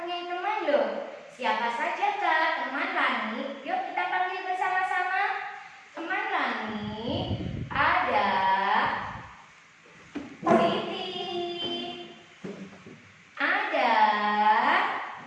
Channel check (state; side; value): identical; both; correlation 1.00